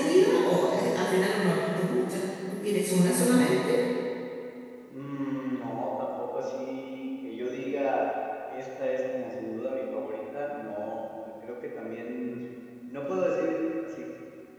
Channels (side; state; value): both; identical; correlation 1.00